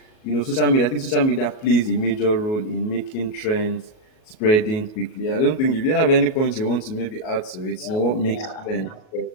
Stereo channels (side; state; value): right; late; 38 ms